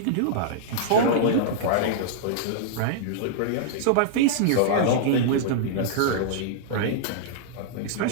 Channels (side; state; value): both; different; correlation -0.02